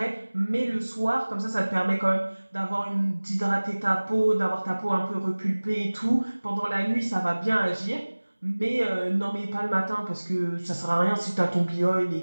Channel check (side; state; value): both; inverted; correlation -1.00